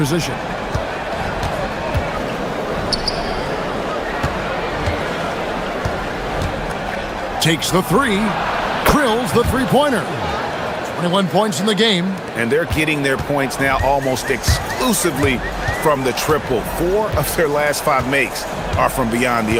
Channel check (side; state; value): both; identical; correlation 1.00